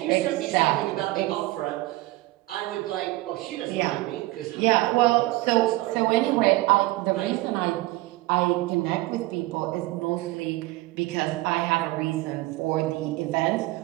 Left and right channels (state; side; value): quieter; left; 19.5 dB